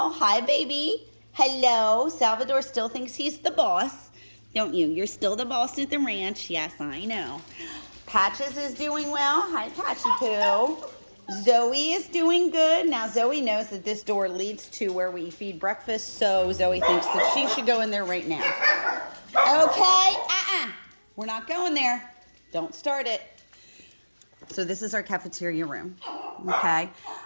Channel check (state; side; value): inverted; both; correlation -1.00